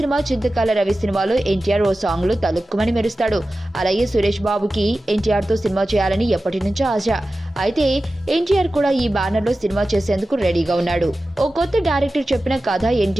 చింతకాల రవి సినిమాలో ఎన్టీఆర్ ఓ సాంగ్ లో తలుక్కుమని మెరుస్తాడు. అలాగే సురేష్ బాబుకి ఎన్టీఆర్ తో సినిమా చేయాలని ఎప్పటి నుంచో ఆశ. అయితే ఎన్టీఆర్ కూడా ఈ బ్యానర్ లో సినిమా చేసేందుకు రెడీగా ఉన్నాడు. ఓ కొత్త డైరెక్టర్ చెప్పిన కథ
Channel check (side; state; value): both; normal; correlation 0.94